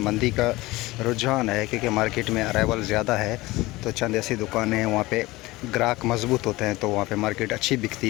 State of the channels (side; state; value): right; quieter; 20.1 dB